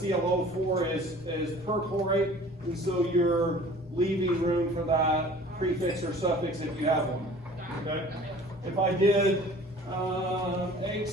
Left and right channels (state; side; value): normal; both; correlation 0.47